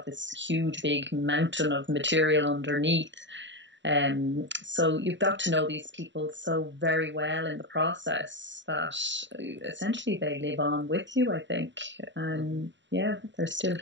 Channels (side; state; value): left; late; 0.53 ms